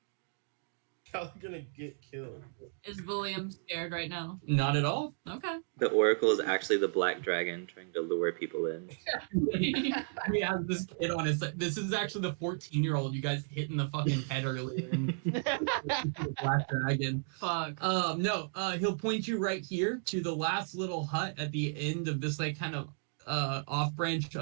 Y'all are gonna get killed. Is William scared right now? Not at all. Okay. The Oracle is actually the black dragon trying to lure people in. We have this kid on his side. This is actually the 14-year-old you guys hit in the fucking head earlier. Black dragon. Fuck. No, he'll point you right here to the last little hut at the end of this like kind of off branch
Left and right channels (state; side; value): silent; left; digital silence